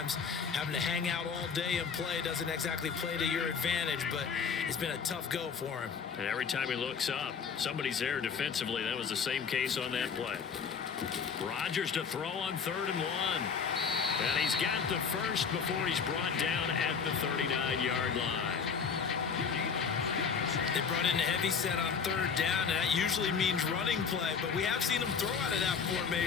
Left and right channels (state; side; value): quieter; right; 6.1 dB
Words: having to hang out all day and play doesn't exactly play to your advantage, but it's been a tough go for him. And every time he looks up, somebody's there defensively. That was the same case on that play. Rodgers to throw on 3rd and 1. And he's got the first before he's brought down at the 39-yard line. They brought in a heavy set on 3rd down, and that usually means running play, but we have seen them throw out of that